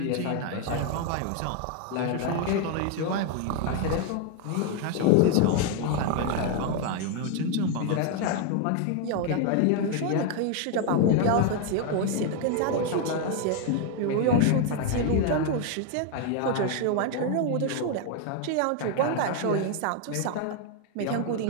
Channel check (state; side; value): different; both; correlation 0.01